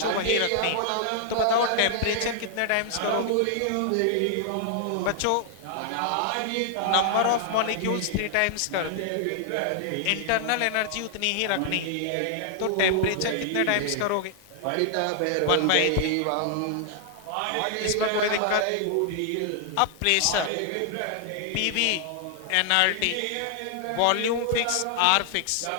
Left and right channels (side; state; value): both; different; correlation 0.00